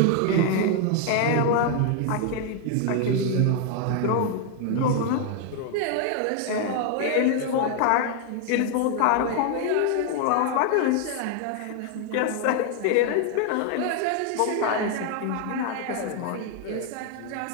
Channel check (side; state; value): both; different; correlation 0.00